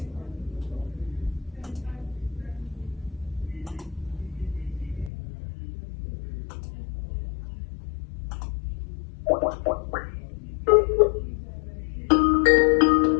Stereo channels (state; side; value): drops out; right; at 5.1 s